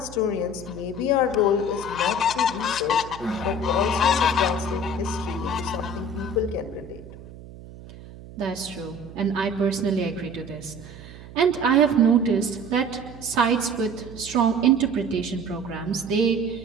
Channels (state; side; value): noise; right; hum, 16 dB below the sound